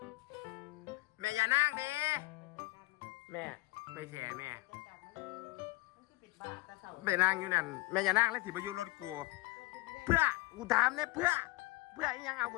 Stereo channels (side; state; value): right; quieter; 21.4 dB